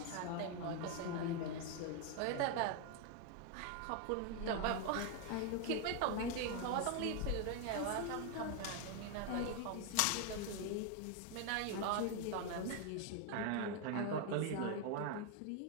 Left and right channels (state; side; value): different; both; correlation 0.01